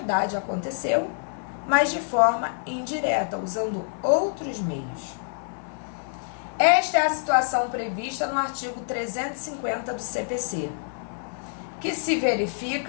aconteceu, mas de forma indireta, usando outros meios. Esta é a situação prevista no artigo 350 do CPC, que se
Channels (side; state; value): right; silent; 60 dB below the other